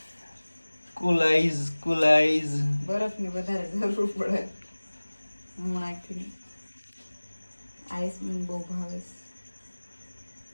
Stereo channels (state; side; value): inverted; both; correlation -1.00